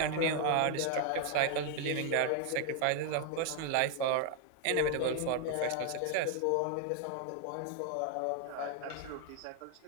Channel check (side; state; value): both; different; correlation 0.00